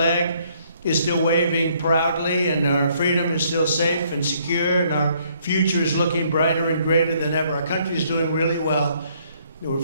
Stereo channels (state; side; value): inverted; both; correlation -0.66